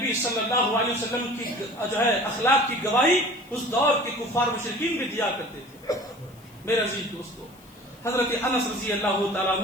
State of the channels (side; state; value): left; noise; hiss, 27 dB below the sound